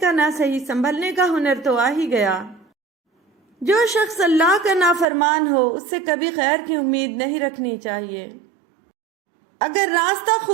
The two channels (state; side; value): drops out; left; at 5.1 s